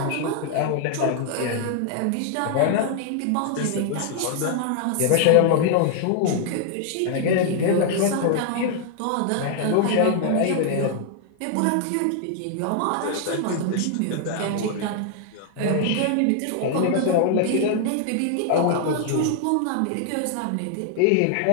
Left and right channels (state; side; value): different; both; correlation 0.00